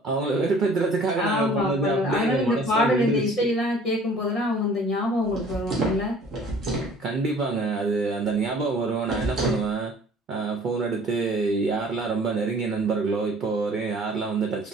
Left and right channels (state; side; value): normal; both; correlation 0.51